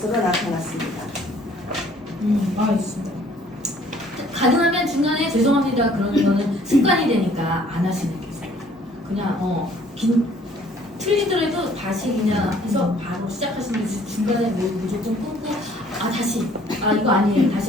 나타났습니다. 알겠습니다. 가능하면 중간에 죄송합니다 그러는 거는 습관이 되니까 안 하시는 게 있어요. 그냥 틀리더라도 다시 그냥 해서 바로 시작하시는 게 중간에 무조건 끊고 다시 이거 아니에요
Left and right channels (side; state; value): both; normal; correlation 0.58